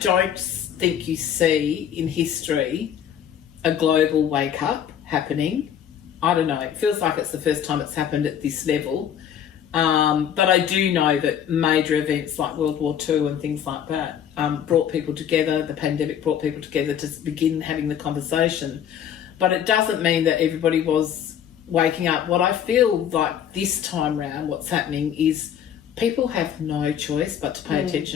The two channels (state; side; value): quieter; right; 9.2 dB